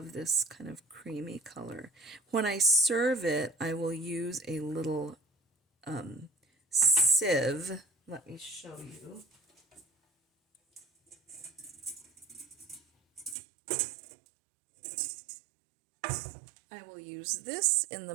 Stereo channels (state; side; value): drops out; left; at 13.4 s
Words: this kind of creamy color. When I serve it, I will use a little sieve. Let me show you. I will use this in the